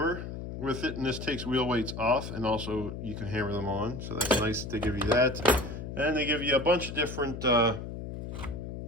with it, and this takes wheel weights off, and also you can hammer them on. So that's nice that they give you that. And they give you a bunch of different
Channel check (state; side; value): noise; left; hum, 8 dB below the sound